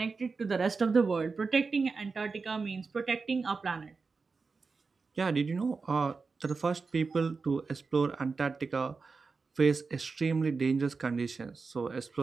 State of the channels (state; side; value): quieter; left; 4.5 dB